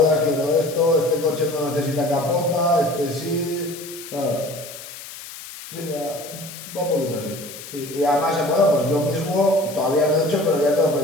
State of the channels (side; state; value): left; noise; hiss, 14 dB below the sound